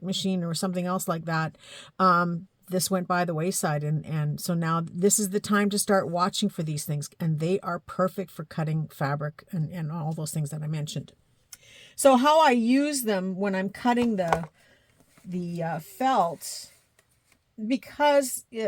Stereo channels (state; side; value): identical; both; correlation 1.00